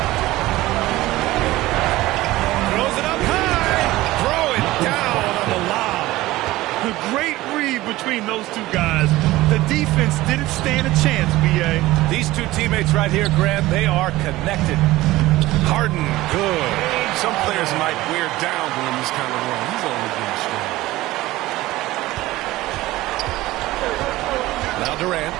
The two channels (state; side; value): quieter; left; 17.7 dB